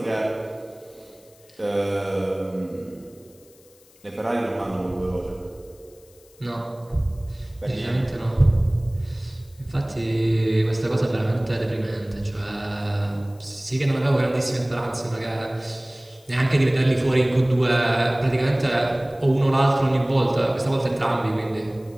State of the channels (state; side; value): noise; left; hiss, 28 dB below the sound